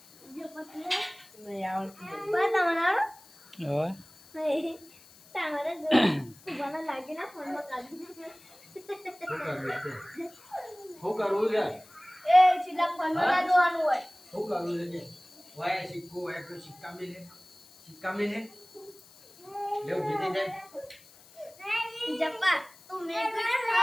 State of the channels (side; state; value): left; noise; hiss, 24 dB below the sound